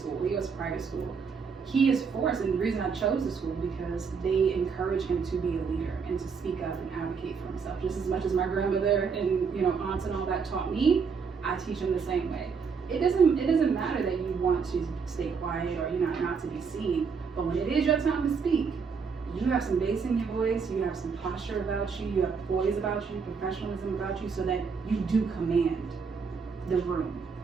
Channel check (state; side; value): quieter; left; 5.6 dB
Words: he goes to private school, he is forced. And the reason I chose the school, because they encourage him to be a leader and to speak up and advocate for himself. Just as much as my grandmother and aunts and all that taught me, I teach him the same way. It doesn't matter that you want to stay quiet or not to be seen, but when it is your time to speak, you have some bass in your voice, you have some posture about you, you have poise about you, professionalism about you, so that you do command the room.